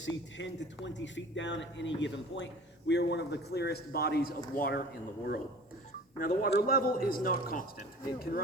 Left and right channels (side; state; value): both; normal; correlation 0.43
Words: 10 to 20 feet down at any given point. We are one of the clearest bodies of water in the world. Now, the water level is not constant. It can